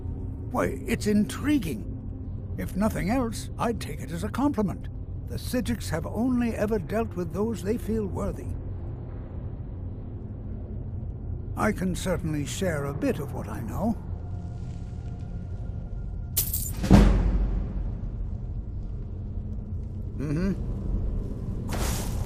Why, it's intriguing. If nothing else, I'd take it as a compliment. The Psijics have only ever dealt with those they feel worthy. I can certainly share a bit of what I know.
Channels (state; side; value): identical; both; correlation 1.00